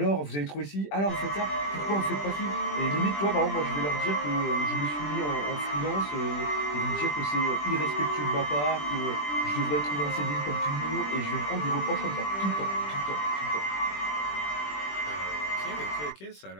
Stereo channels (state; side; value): late; right; 20 ms